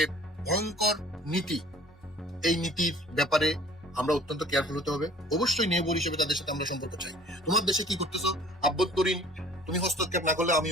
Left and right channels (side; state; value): both; normal; correlation 0.51